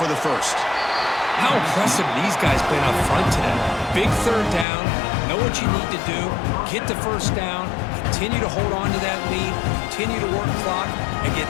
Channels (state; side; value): drops out; right; at 4.7 s